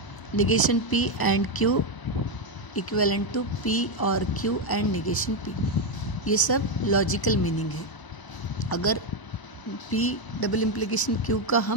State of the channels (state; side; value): late; right; 1.0 ms